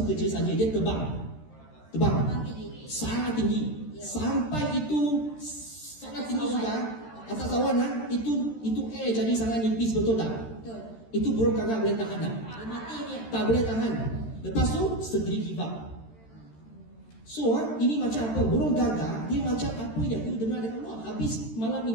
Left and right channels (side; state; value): right; late; 13 ms